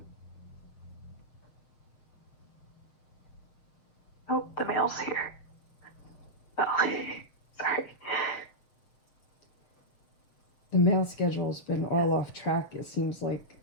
Yeah. Oh, the mail's here. Oh, sorry. The mail schedule's been all off track, it seems like,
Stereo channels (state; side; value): late; right; 7.0 ms